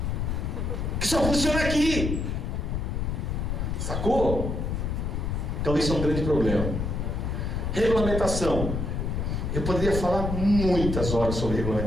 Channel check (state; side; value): noise; left; rumble, 1 dB below the sound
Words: Que só funciona aqui. Sacou? Então isso é um grande problema. Regulamentação. Eu poderia falar muitas horas sobre